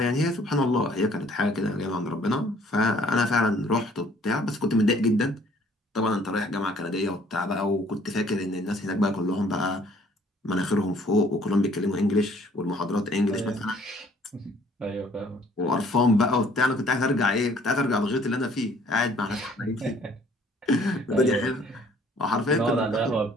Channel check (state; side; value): normal; both; correlation 0.58